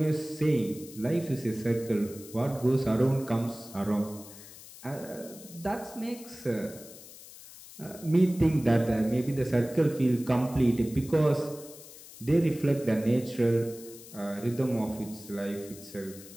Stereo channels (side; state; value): left; noise; hiss, 17 dB below the sound